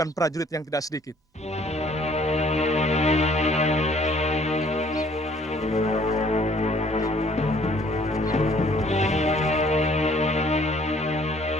prajurit yang tidak sedikit.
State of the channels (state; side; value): normal; both; correlation 0.58